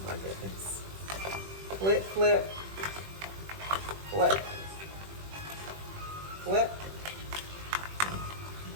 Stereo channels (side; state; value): left; late; 21 ms